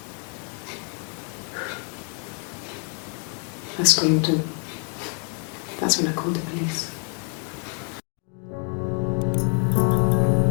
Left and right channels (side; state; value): right; quieter; 39.5 dB